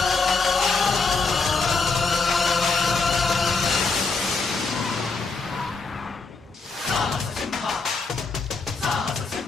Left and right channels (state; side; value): quieter; right; 4.2 dB